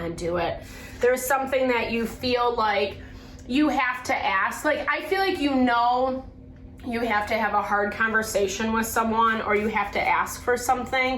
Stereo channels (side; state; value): both; identical; correlation 1.00